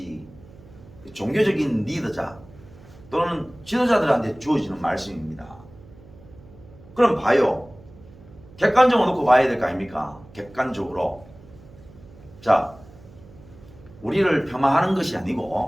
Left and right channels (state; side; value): noise; right; hum, 22 dB below the sound